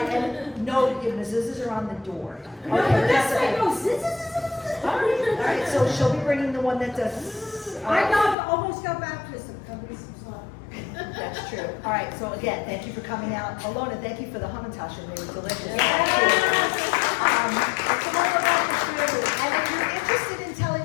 and no, the mezuzahs are on the door. Okay, that's right. All right, so she'll be bringing the one that does. I almost got baptized. That's true. All right, so again, thank you for coming out. Alona, thank you for the hamantash, and they were delicious. It's all about the food. And if you're interested in telling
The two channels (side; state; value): right; drops out; at 8.3 s